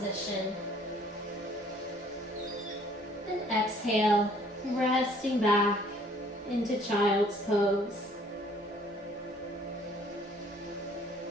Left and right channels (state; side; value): normal; both; correlation 0.58